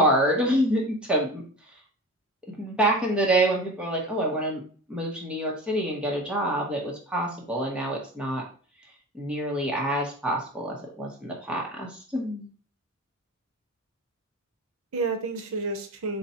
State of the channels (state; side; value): normal; both; correlation 0.32